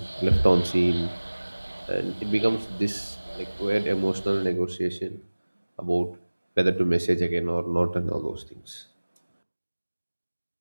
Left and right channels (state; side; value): inverted; both; correlation -1.00